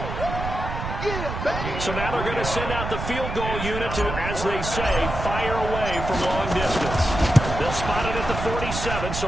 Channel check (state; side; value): noise; right; rumble, 5 dB below the sound